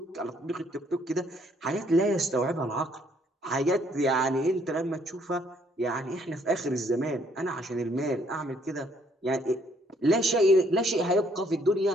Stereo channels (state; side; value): normal; both; correlation 0.66